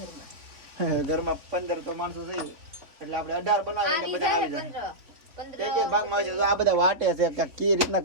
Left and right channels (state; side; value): late; left; 3.4 ms